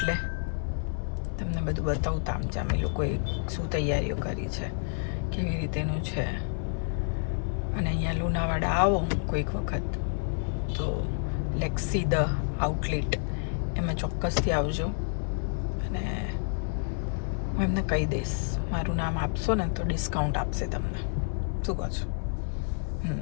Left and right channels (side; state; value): right; silent; digital silence